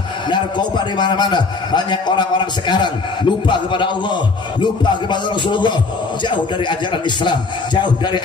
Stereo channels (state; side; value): quieter; right; 4.1 dB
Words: narkoba di mana-mana. Banyak orang-orang sekarang lupa kepada Allah, lupa kepada Rasulullah, jauh dari ajaran Islam, jauh dari